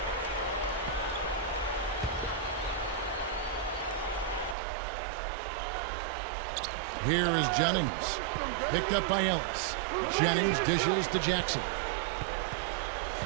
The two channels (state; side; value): drops out; left; at 4.5 s